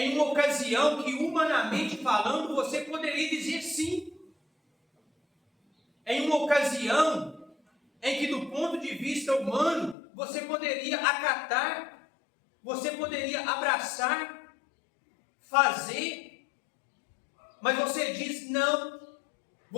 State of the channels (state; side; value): drops out; right; at 10.0 s